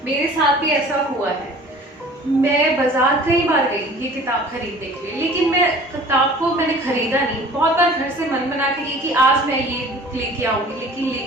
मेरे साथ भी ऐसा हुआ है। मैं बाजार कई बार गई ये किताब खरीदने के लिए, लेकिन मैं किताब को मैंने खरीदा नहीं। बहुत बार घर से मन बना के गई कि आज मैं ये बुक लेके आऊंगी, लेकिन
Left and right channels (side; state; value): both; normal; correlation 0.46